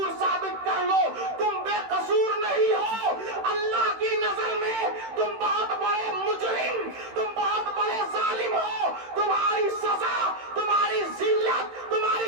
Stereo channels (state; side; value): late; left; 16 ms